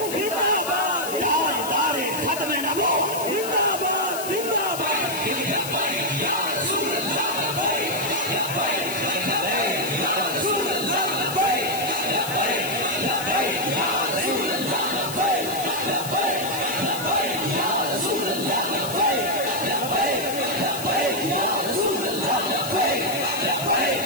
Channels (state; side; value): noise; left; hiss, 8 dB below the sound